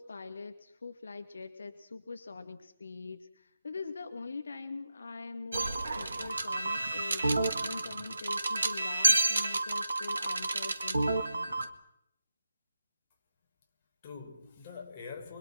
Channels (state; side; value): inverted; both; correlation -0.90